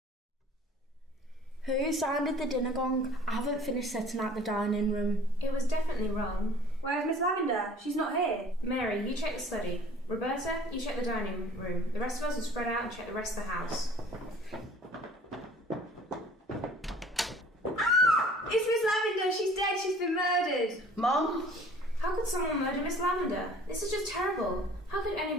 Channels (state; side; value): normal; both; correlation 0.50